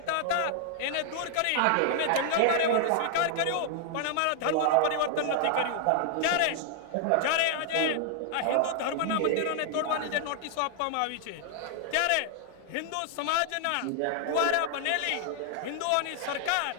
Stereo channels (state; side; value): different; both; correlation 0.00